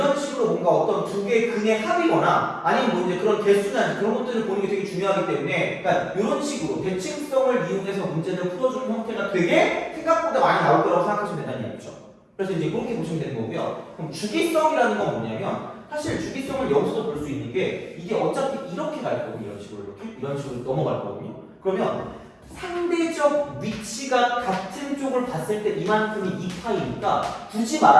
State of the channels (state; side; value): identical; both; correlation 1.00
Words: 식으로 뭔가 어떤 두 개의 근의 합이거나 아니면 뭐 이제 그런 개수나 그런 것들을 보는 게 되게 중요하기 때문에 그러니까 이런 식으로 대칭성을 이용해서 문제를 풀어주는 형태가 되게 생각보다 많이 나올 거라고 생각하시면 된다는 얘기죠. 그래서 이제 그렇게 보시면 되는 거고요. 그럼 주기성이라는 건 뭐냐면 사실 주기성을 여기서도 볼 수 있는 게 이게 어차피 이렇게 갈 거거든요. 이런 식으로 넘어갈 거거든요. 그러면 상대적 위치가 같은 쪽을 봤을 때 이만큼이 2파이니까 굳이